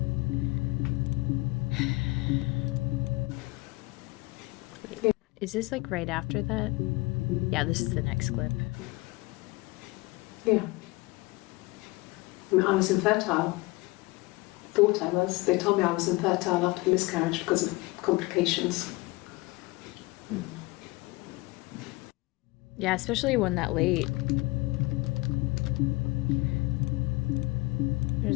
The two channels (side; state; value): right; quieter; 23.0 dB